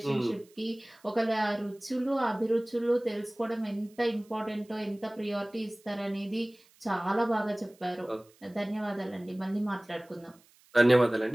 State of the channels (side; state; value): right; noise; hiss, 30 dB below the sound